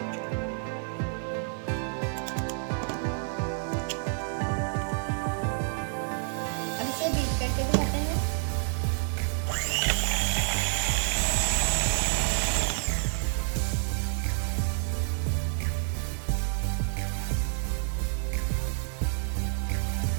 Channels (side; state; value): left; silent; digital silence